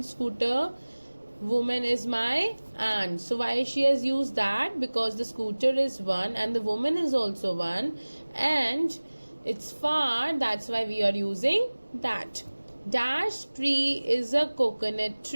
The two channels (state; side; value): inverted; both; correlation -1.00